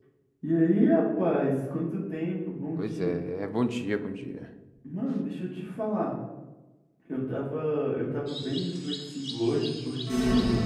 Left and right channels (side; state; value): both; identical; correlation 1.00